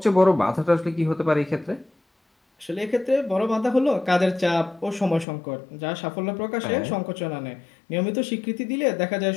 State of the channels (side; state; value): right; drops out; at 5.2 s